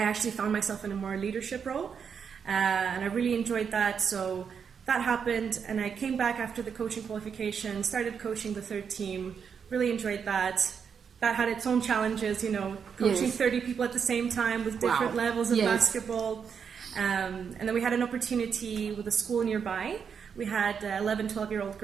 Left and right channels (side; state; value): left; quieter; 6.8 dB